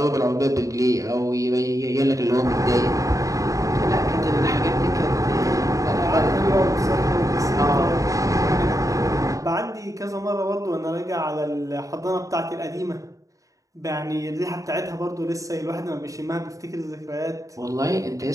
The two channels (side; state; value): left; late; 0.16 ms